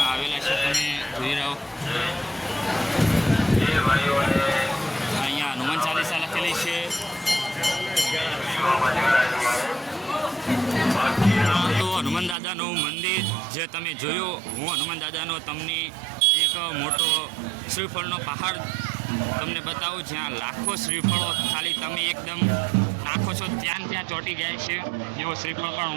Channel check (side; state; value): left; drops out; at 12.4 s